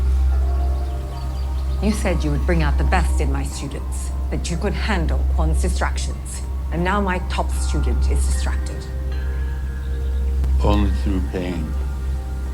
You said you would bring out the best in my students, that you could handle Quan's distractions. And now my top student is distracted. Only through pain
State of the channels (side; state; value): both; identical; correlation 1.00